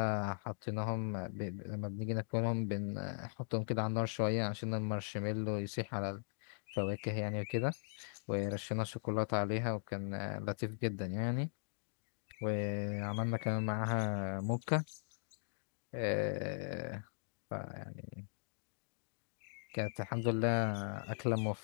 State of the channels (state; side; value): silent; right; digital silence